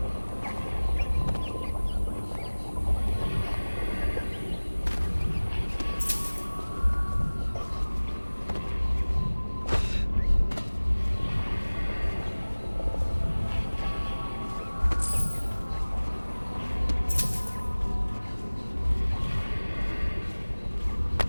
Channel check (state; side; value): inverted; both; correlation -1.00